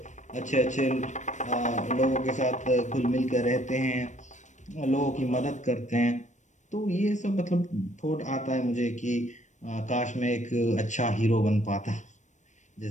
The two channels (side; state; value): right; late; 0.35 ms